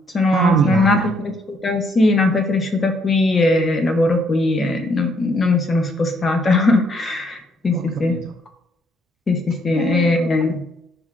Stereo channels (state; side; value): normal; both; correlation 0.70